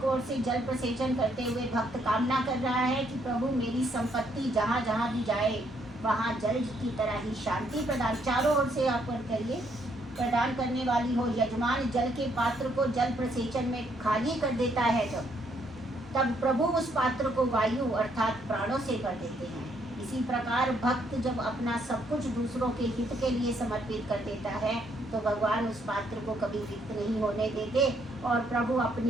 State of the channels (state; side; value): normal; both; correlation 0.71